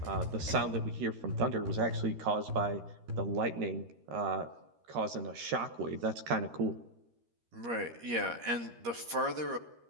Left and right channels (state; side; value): late; left; 13 ms